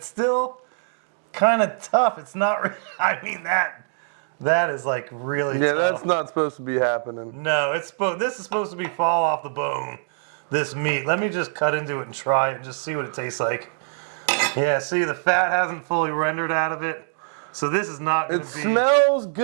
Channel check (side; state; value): left; silent; digital silence